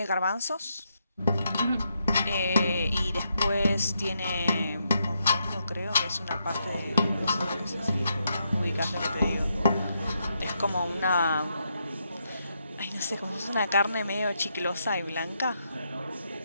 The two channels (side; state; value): both; inverted; correlation -0.80